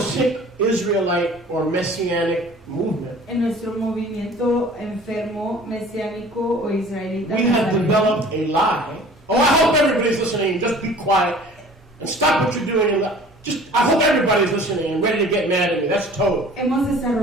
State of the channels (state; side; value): normal; both; correlation 0.47